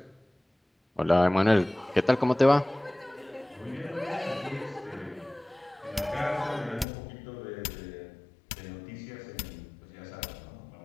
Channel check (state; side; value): drops out; right; at 6.9 s